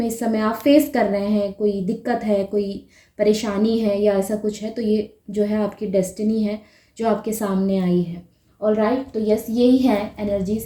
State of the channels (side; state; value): both; identical; correlation 1.00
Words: इस समय आप फेस कर रहे हैं, कोई दिक्कत है, कोई परेशानी है या ऐसा कुछ है, तो ये जो है आपकी डेस्टिनी है जो आपके सामने आई है। ऑलराइट, तो यस यही है